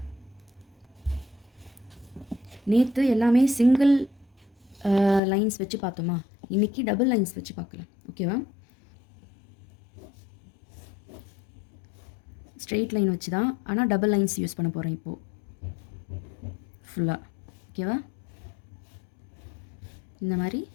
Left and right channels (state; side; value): drops out; right; at 5.2 s